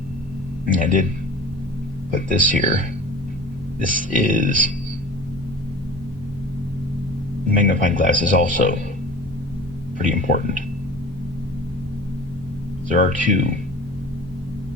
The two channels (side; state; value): both; normal; correlation 0.39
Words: And I did put this here. This is... magnifying glass is also pretty important. There are two